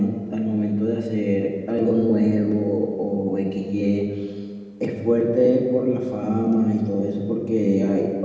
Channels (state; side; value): identical; both; correlation 1.00